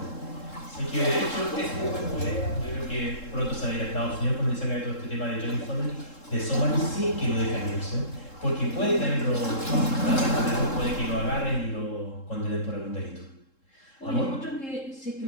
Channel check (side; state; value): right; late; 3.7 ms